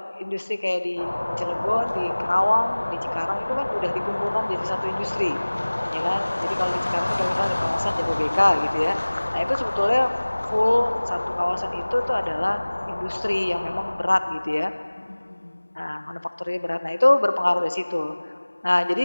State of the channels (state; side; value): inverted; both; correlation -1.00